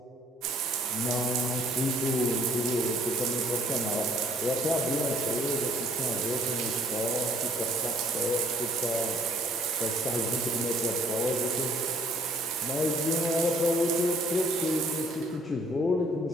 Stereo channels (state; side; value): normal; both; correlation 0.59